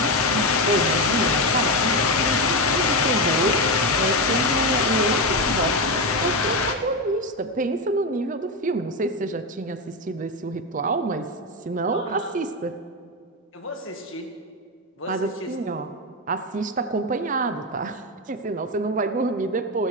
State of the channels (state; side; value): normal; both; correlation 0.12